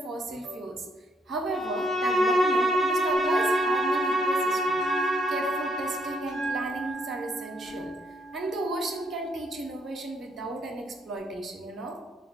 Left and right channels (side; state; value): both; normal; correlation 0.72